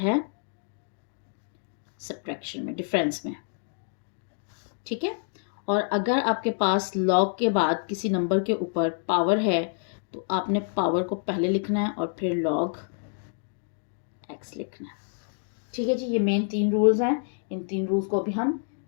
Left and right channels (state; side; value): silent; right; digital silence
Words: सब्ट्रैक्शन में, डिफरेंस में। ठीक है। और अगर आपके पास लॉग के बाद किसी नंबर के ऊपर पावर है तो आपने पावर को पहले लिखना है और फिर लॉग एक्स लिखना है। ठीक है जी, ये मेन 3 रूल्स हैं। इन 3 रूल्स को अभी हम